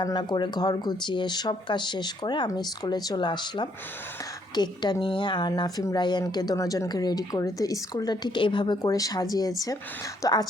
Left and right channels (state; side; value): normal; both; correlation 0.69